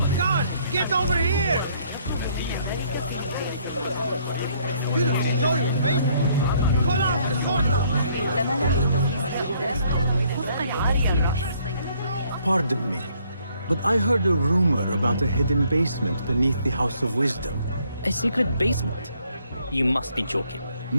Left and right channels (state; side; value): inverted; both; correlation -0.66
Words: God, get over here! You don't show your face! Pull out the sword! Pardon me, but I heard a rumor about a hidden basement beneath the House of Wisdom. A secret basement? You must be joking.